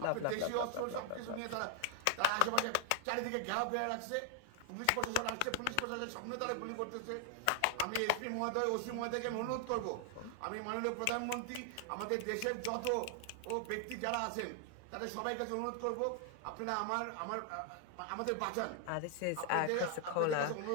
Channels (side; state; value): both; different; correlation 0.00